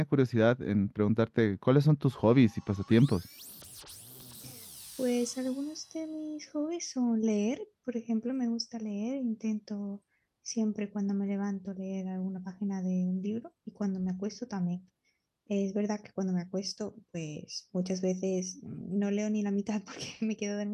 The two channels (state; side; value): identical; both; correlation 1.00